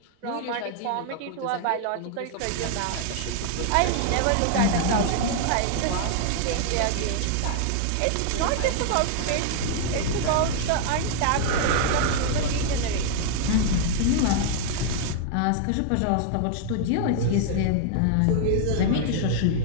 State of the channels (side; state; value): both; different; correlation 0.00